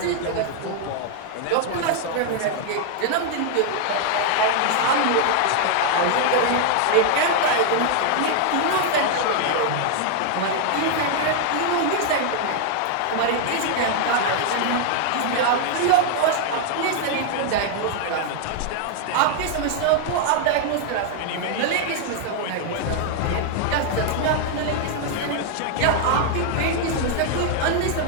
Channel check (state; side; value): different; both; correlation 0.00